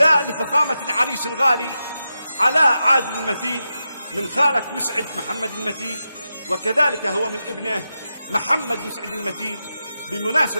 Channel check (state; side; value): inverted; both; correlation -0.89